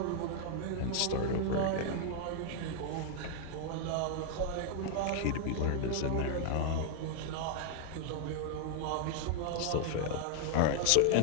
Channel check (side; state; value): both; different; correlation 0.00